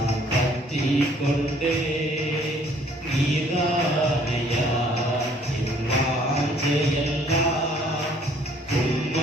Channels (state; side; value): normal; both; correlation 0.60